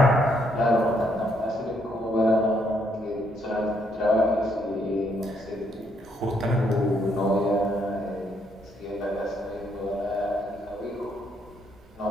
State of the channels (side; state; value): both; normal; correlation 0.72